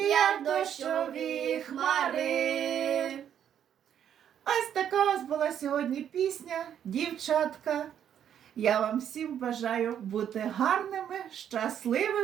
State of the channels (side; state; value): left; quieter; 9.4 dB